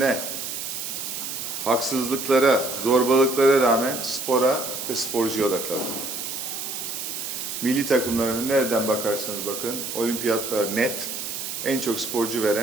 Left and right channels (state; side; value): noise; right; hiss, 5 dB below the sound